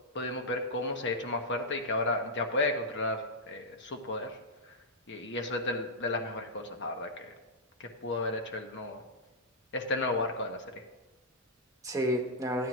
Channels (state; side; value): normal; both; correlation -0.07